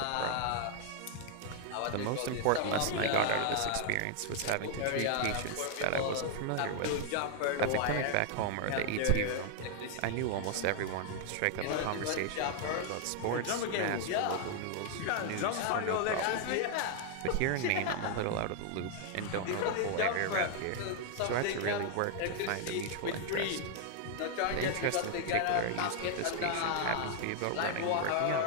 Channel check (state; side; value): different; both; correlation 0.00